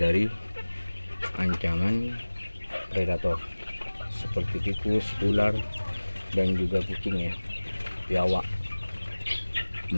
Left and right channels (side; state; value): both; inverted; correlation -1.00